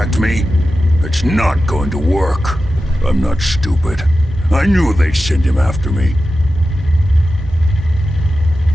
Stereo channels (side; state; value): both; normal; correlation 0.92